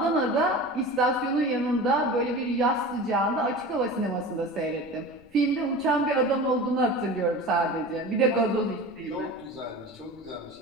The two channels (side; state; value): left; noise; rumble, 28 dB below the sound